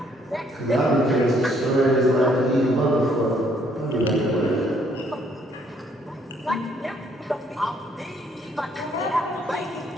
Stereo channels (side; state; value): both; normal; correlation 0.67